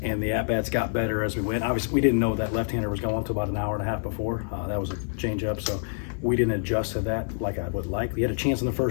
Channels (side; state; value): right; silent; digital silence